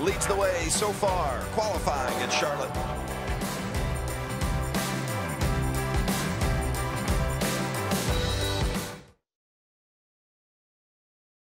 the way so far, qualifying at Charlotte.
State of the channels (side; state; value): both; identical; correlation 1.00